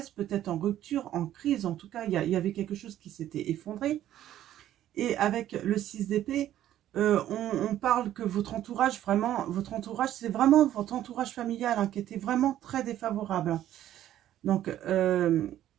peut-être en rupture, en crise, en tout cas, il y avait quelque chose qui s'était effondré. Et avec le 6 d'épée, on parle que votre entourage, c'est vraiment votre entourage familial hein, qui était vraiment très défavorable. Donc,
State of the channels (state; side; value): quieter; left; 12.3 dB